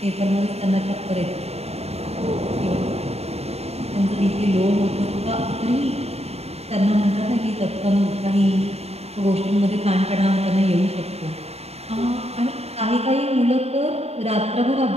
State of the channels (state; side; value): late; left; 0.30 ms